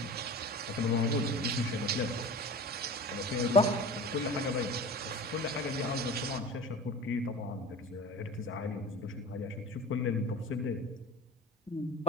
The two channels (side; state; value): both; normal; correlation 0.35